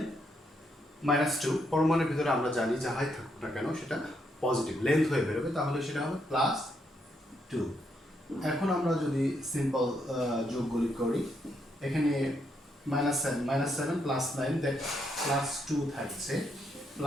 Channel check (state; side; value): normal; both; correlation 0.77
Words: -2, পরমাণুর ভিতরে আমরা জানি যাহাই থাকুক না কেন সেটা পজিটিভ লেন্থ হয়ে বেরোবে, তাহলে সেটা হবে +2। এখন আমরা যদি সিম্পল যোগগুলি করি, এখানে -7 +9 দেন +2 থাকছে,